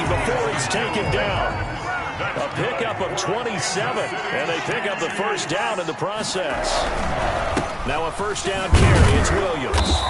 before he's taken down. A pickup of 27, and they pick up the first down in the process. Now a first down carry, it's Williams.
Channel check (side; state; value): both; identical; correlation 1.00